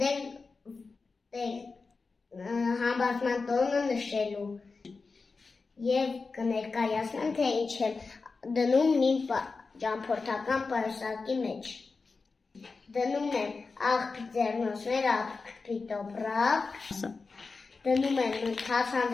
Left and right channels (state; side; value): quieter; right; 4.3 dB